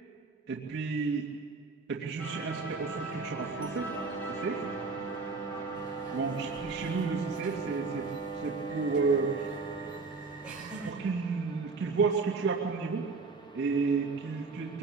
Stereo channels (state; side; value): quieter; left; 4.2 dB